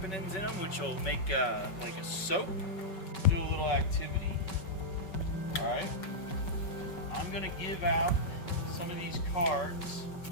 in them, which will make like a soap. Do a little activity. All right. I'm gonna give out some of these cards.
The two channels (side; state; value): right; late; 5.3 ms